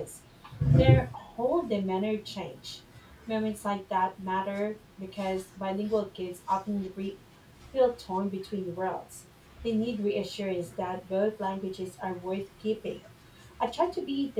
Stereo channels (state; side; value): identical; both; correlation 1.00